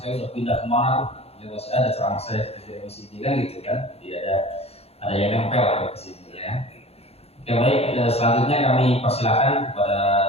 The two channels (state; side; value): late; right; 0.29 ms